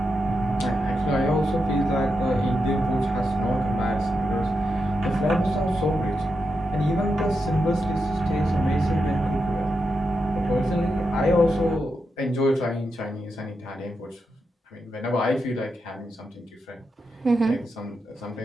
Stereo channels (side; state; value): both; normal; correlation 0.86